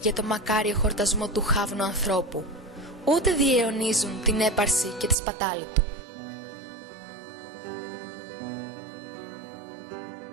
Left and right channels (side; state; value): left; drops out; at 5.2 s